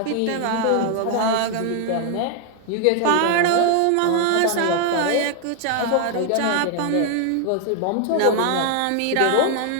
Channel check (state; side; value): different; both; correlation 0.00